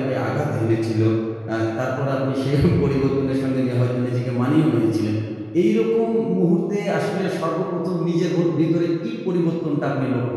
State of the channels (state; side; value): identical; both; correlation 1.00